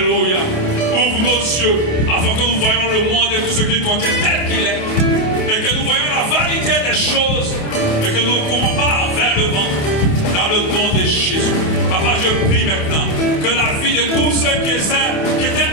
Ouvre nos yeux afin que nous voyions le monde et tout ce qu'il contient tel qu'il est. Et que nous voyions la vanité des choses. Et que nous ne courons pas vers le vent. Dans le nom de Jésus. Papa, je prie maintenant que la vie de tous ceux qui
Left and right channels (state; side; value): late; right; 28 ms